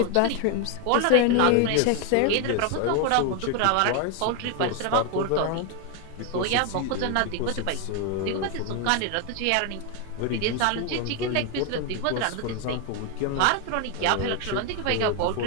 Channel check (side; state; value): both; different; correlation 0.01